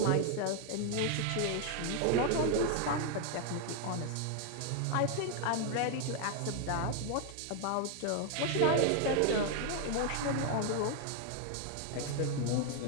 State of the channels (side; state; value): both; different; correlation 0.00